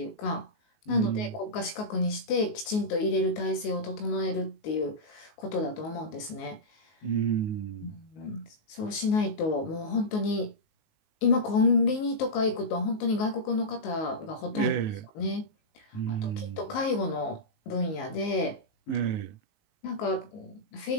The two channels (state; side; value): late; right; 19 ms